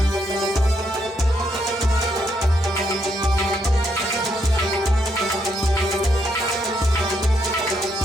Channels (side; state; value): both; normal; correlation 0.76